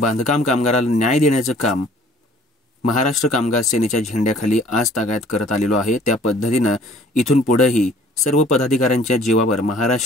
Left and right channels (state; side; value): normal; both; correlation 0.54